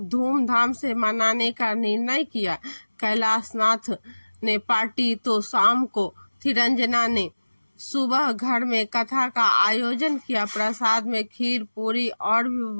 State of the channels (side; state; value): both; inverted; correlation -1.00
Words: धूमधाम से मनाने का निर्णय किया। कैलाश नाथ ने पार्टी तो शाम को थी। रंजना ने सुबह घर में कथा का आयोजन किया। प्रसाद में खीर, पूरी और भी